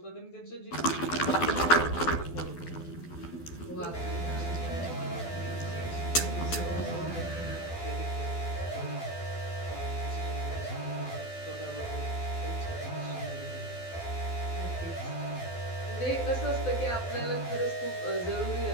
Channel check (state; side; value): late; right; 12 ms